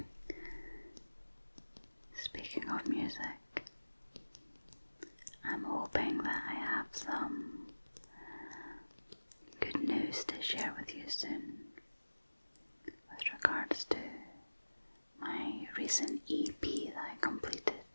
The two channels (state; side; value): inverted; both; correlation -1.00